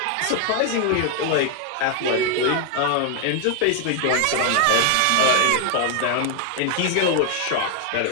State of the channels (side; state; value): both; different; correlation 0.00